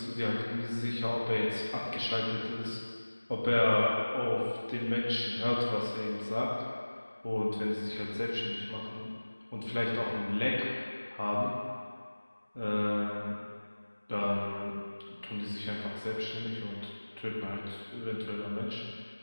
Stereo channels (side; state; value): both; inverted; correlation -1.00